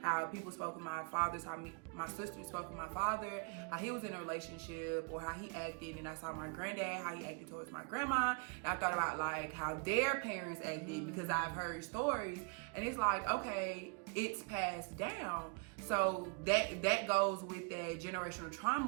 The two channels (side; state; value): left; quieter; 36.3 dB